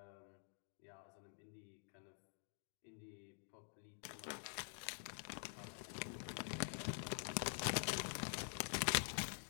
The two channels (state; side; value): silent; right; digital silence